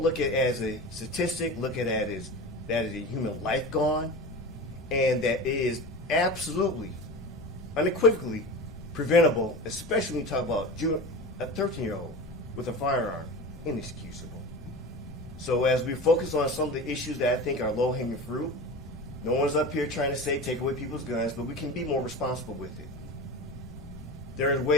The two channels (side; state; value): both; normal; correlation 0.30